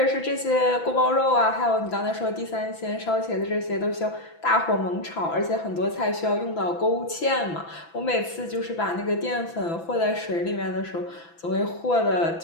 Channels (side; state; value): right; late; 6.0 ms